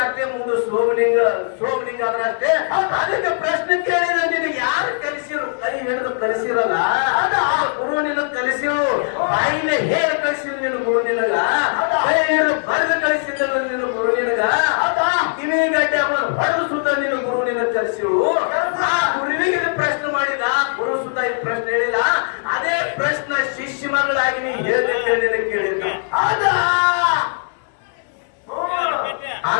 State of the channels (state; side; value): silent; right; digital silence